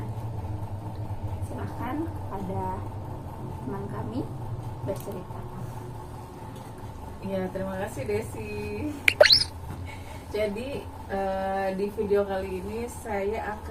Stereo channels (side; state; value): both; identical; correlation 1.00